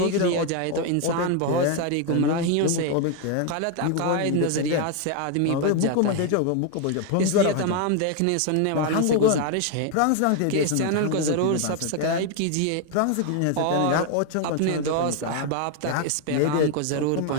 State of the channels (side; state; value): both; different; correlation 0.01